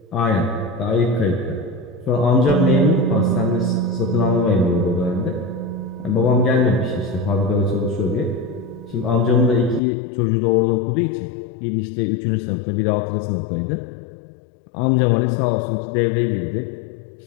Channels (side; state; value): right; drops out; at 9.8 s